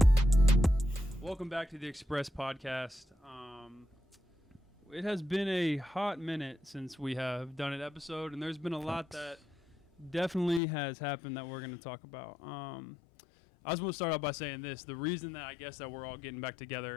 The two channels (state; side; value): drops out; right; at 10.6 s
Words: Welcome back to the Express podcast. It has been a hot minute since we have done an episode, and there's been a lot that definitely has happened that we're going to talk about. I just want to start out by saying this. The reason that I guess that we're all getting back